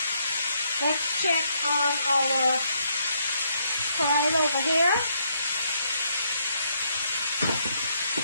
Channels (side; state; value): both; inverted; correlation -0.74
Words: Let's check on our Karela over here.